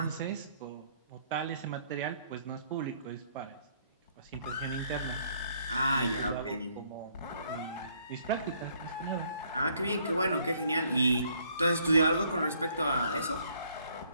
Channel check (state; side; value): inverted; both; correlation -0.65